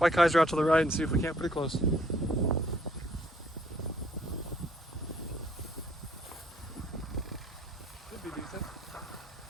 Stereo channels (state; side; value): normal; both; correlation 0.63